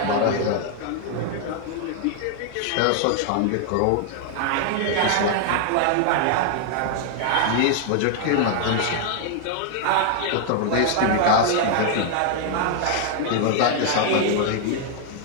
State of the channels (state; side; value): different; both; correlation 0.00